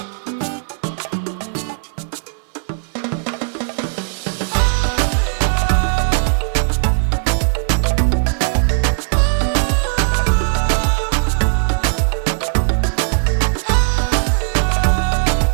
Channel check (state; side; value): silent; left; digital silence